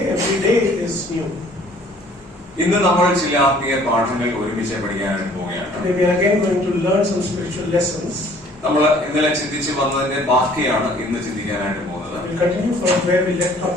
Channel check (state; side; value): normal; both; correlation 0.55